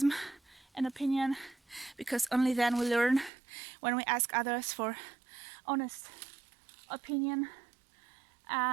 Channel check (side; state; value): left; drops out; at 3.3 s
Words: and opinion, because only then we learn. When we ask others for honest opinion,